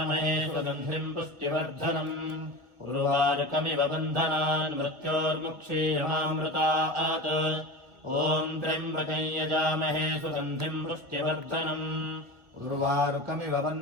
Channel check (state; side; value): late; left; 2.1 ms